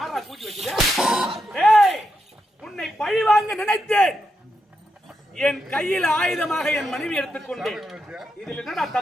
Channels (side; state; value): both; normal; correlation 0.84